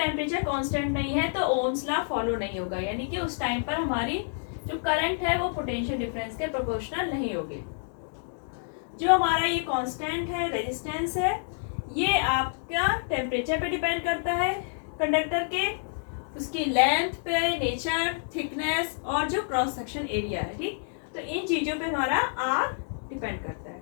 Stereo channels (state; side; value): silent; right; digital silence